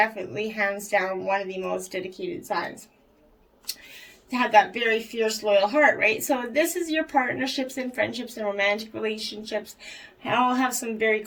hands down one of the most dedicated signs. To have that very fierce, loyal heart, right? So this is your partnerships and friendships and romantic relationships. All have some very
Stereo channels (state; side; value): identical; both; correlation 1.00